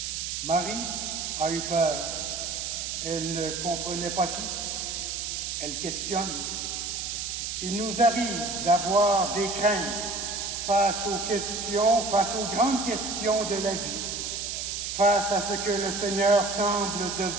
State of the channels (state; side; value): noise; right; hiss, 4 dB below the sound